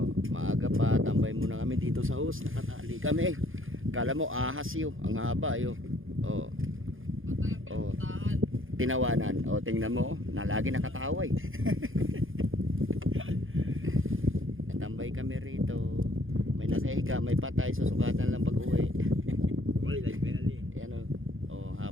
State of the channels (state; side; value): late; left; 0.59 ms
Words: maaga pa, tambay muna kami dito sa hus, nakatali kami. Akala mo ahas yun, ang haba yun. Tinawanan. Tingnan mo, nalagi nakataway. Tambay kami rito. May nakahiga, may patay, susukatan lang pag-uwi. Wala lang penalty. Ayan